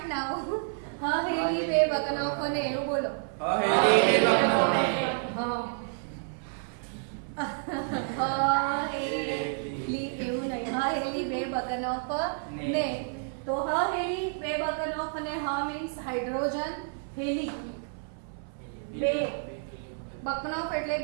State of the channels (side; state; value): left; silent; 58 dB below the other